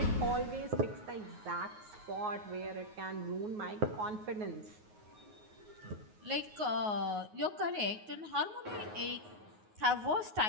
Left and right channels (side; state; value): left; late; 9.5 ms